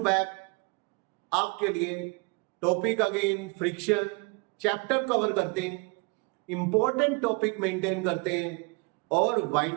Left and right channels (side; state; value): left; quieter; 29.5 dB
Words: आपके लिए topic again friction chapter cover करते हैं, important topic maintain करते हैं और